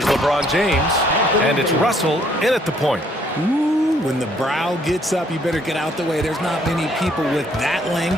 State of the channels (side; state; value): both; normal; correlation 0.65